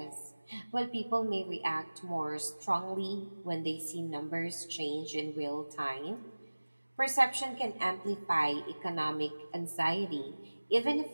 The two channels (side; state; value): both; inverted; correlation -1.00